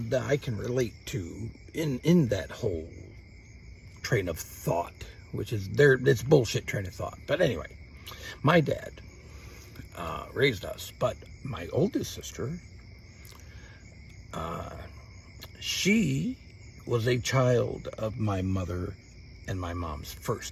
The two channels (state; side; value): identical; both; correlation 1.00